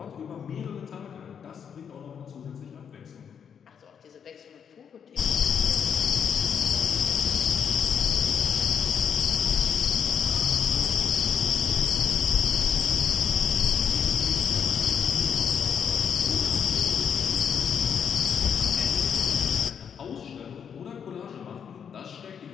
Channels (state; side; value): quieter; right; 7.5 dB